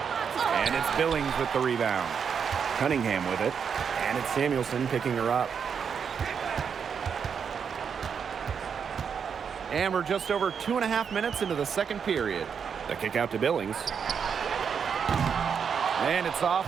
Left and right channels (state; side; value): quieter; left; 6.8 dB